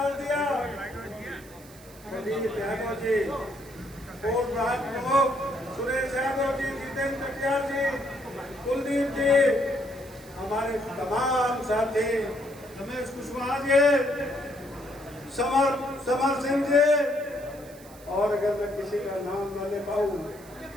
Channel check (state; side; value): noise; right; hiss, 22 dB below the sound